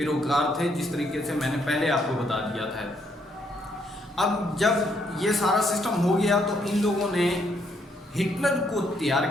تھے، جس طریقے سے میں نے پہلے آپ کو بتا دیا تھا۔ اب جب یہ سارا سسٹم ہو گیا تو ان لوگوں نے ہٹلر کو تیار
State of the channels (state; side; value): normal; both; correlation 0.72